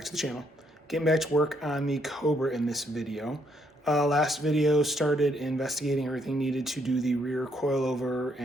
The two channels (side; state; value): both; normal; correlation 0.72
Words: to the channel. Getting back to work on the Cobra in this video. Last video started investigating everything needed to do the rear coilover